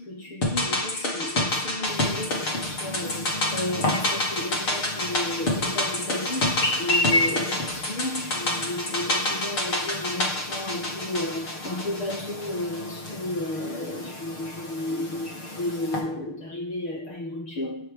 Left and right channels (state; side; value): late; right; 6.6 ms